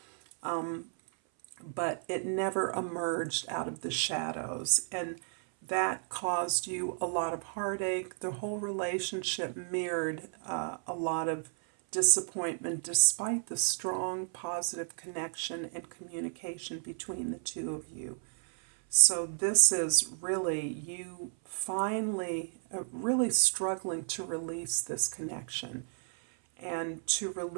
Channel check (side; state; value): left; silent; 56 dB below the other